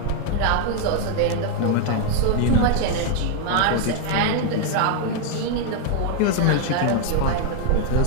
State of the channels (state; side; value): different; both; correlation 0.00